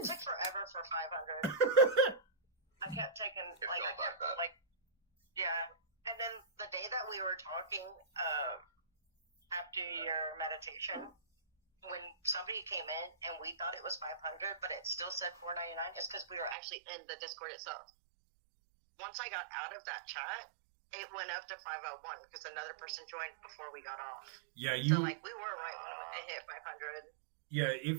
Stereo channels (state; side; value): drops out; left; at 16.6 s